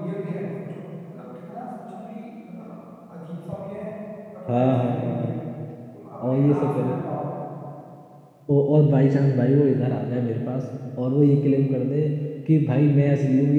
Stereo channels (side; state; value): both; identical; correlation 1.00